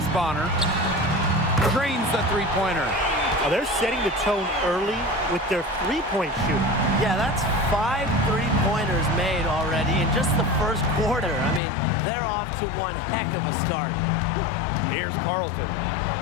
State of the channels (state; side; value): drops out; right; at 11.6 s